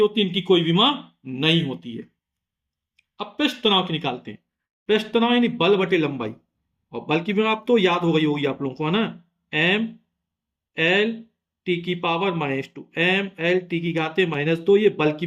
है, इनकी कोई विमा नहीं होती है। अब पृष्ठ तनाव की निकालते हैं। पृष्ठ तनाव यानी बल बटे लंबाई, और बल की विमा आप तो याद हो गई होगी आप लोगों को, है ना, m L T की पावर -2, m L T की घाते -2, ये बल की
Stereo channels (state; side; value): identical; both; correlation 1.00